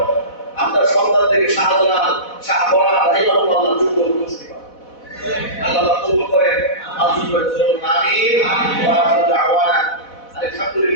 আপনার সন্তানদেরকে শাহজালাল, শাহবরা, রাহিমাহুল্লাহ যোগ্য উপস্থিত পান। আল্লাহ কবুল করেন, আমিন ওয়া আমিন ওয়া আখিরু দাওয়ানা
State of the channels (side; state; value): right; late; 4.1 ms